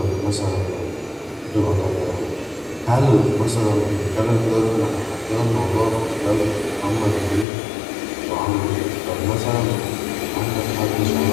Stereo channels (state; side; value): drops out; right; at 7.5 s